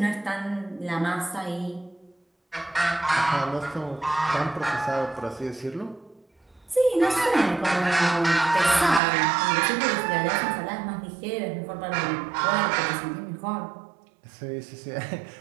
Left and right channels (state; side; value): drops out; left; at 9.0 s